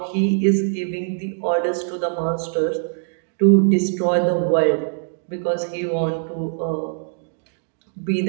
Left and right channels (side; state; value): left; silent; digital silence